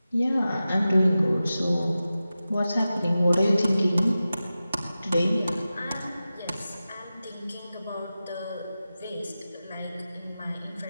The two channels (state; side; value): inverted; both; correlation -0.94